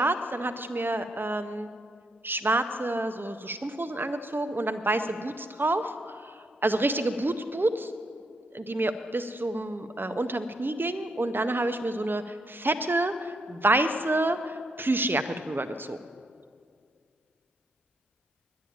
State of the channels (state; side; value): normal; both; correlation 0.76